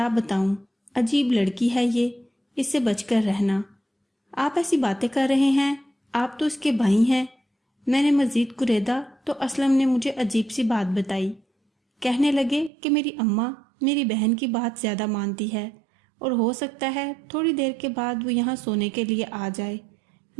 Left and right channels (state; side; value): drops out; left; at 12.7 s